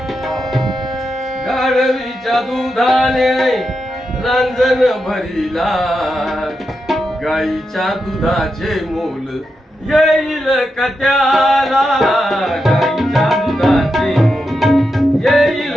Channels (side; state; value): both; normal; correlation 0.87